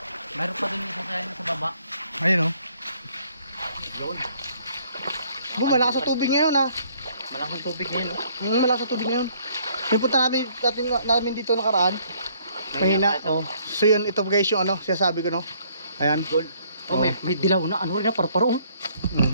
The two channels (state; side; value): inverted; both; correlation -0.63